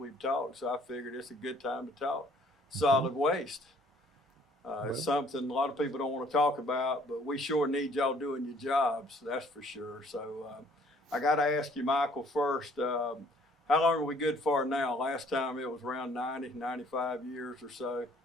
talked, so I figured it's a good time to talk. Solid waste. It's something a lot of people don't want to talk about, but we sure need y'all doing your jobs, that's for sure. So I got to ask you, Michael, first, how long are we good for now? Last time it was around 90, 95 years or so.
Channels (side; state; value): both; normal; correlation 0.59